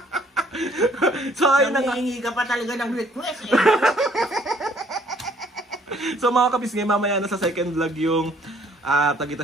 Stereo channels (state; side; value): normal; both; correlation 0.62